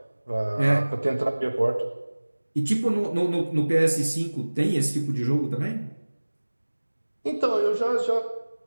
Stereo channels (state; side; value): inverted; both; correlation -1.00